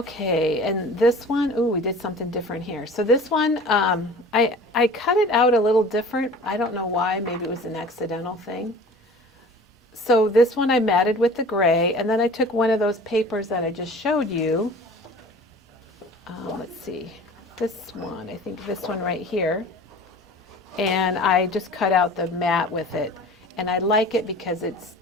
and this one, ooh, we did something different here. So this one, I cut it out a little different. I don't know why, maybe it was an accidental thing. So this one I matted with the gray, and then I took one of those papers that I just showed you. Let's see, this one, I think this one right here. And I just cut out the matte with it. And I like it because it's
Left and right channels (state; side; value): normal; both; correlation 0.43